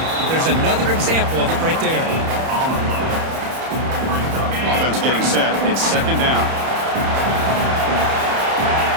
There's another example of it right there. Offense getting set. It's second down.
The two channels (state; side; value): late; left; 31 ms